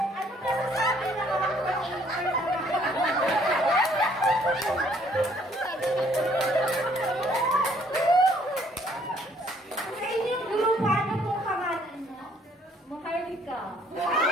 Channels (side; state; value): both; normal; correlation 0.63